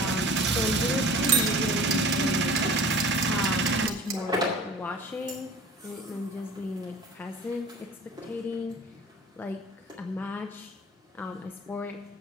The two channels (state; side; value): normal; both; correlation 0.42